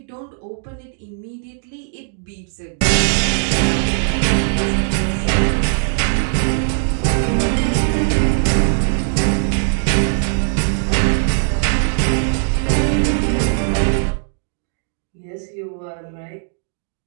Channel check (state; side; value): silent; left; digital silence